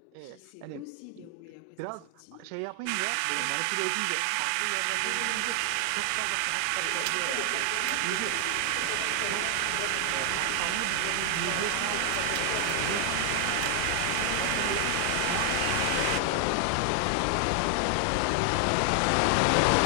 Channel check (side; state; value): both; different; correlation 0.00